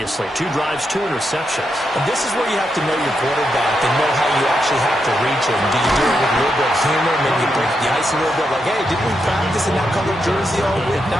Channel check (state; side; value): normal; both; correlation 0.83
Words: 2 drives, 2 interceptions. And this is where you have to know your quarterback and know how you actually have to reach him. Do you do it with a little bit of humor? Maybe you break the ice a little bit, like, hey, didn't we practice in that color jersey all week, not